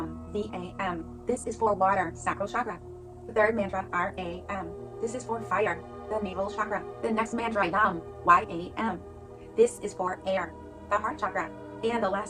V-A-M. This is for water, sacral chakra. The third mantra, R-A-M. This is for fire, the navel chakra. The next mantra, YAM, Y-A-M. This is for air, the heart chakra. And the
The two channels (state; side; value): identical; both; correlation 1.00